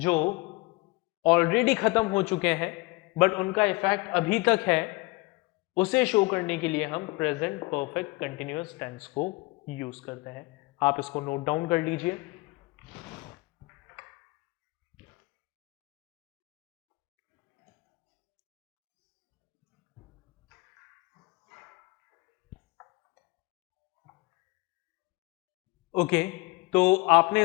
ऑलरेडी खत्म हो चुके हैं बट उनका इफेक्ट अभी तक है, उसे शो करने के लिए हम प्रेजेंट परफेक्ट कंटिन्यूअस टेंस को यूज करते हैं। आप इसको नोट डाउन कर लीजिए। ओके, तो आपने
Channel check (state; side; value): quieter; right; 24.2 dB